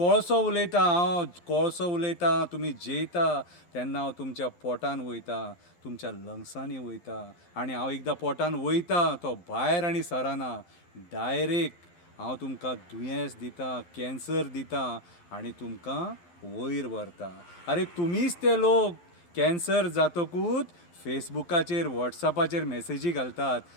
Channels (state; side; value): late; right; 11 ms